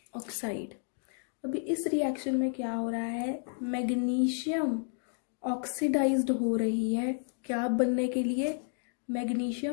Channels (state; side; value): silent; right; digital silence